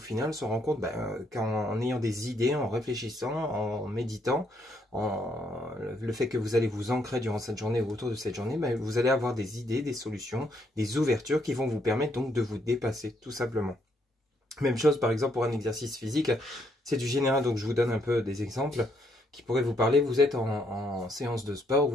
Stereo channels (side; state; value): both; normal; correlation 0.72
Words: se rend compte qu'en ayant des idées, en réfléchissant, en méditant, le fait que vous allez vous ancrer durant cette journée ou autour de cette journée, vous allez avoir des idées, des solutions, des ouvertures qui vont vous permettre donc de vous dépasser tout simplement. Même chose par exemple pour un exercice physique, c'est du général, donc je vous donne un peu des exemples qui pourraient vous parler. Vous êtes en séance de sport